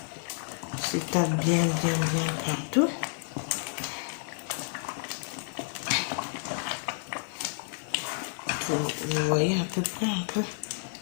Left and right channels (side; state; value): right; silent; digital silence